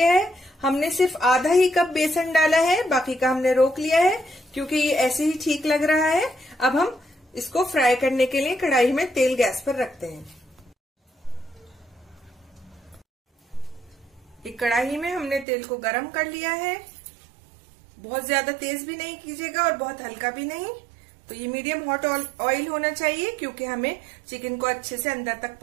है। हमने सिर्फ आधा ही कप बेसन डाला है, बाकी का हमने रोक लिया है क्योंकि ये ऐसे ही ठीक लग रहा है। अब हम इसको फ्राई करने के लिए कढ़ाई में तेल गैस पर रखते हैं। एक कढ़ाई में हमने तेल को गरम कर लिया है। बहुत ज्यादा तेज भी नहीं कीजिएगा और बहुत हल्का भी नहीं। तो ये मीडियम हॉट ऑयल होना चाहिए क्योंकि हमें चिकन को अच्छे से अंदर तक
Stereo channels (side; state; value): left; drops out; at 15.5 s